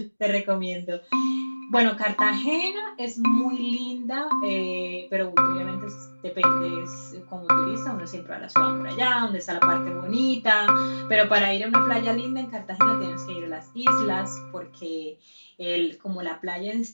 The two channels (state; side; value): inverted; both; correlation -1.00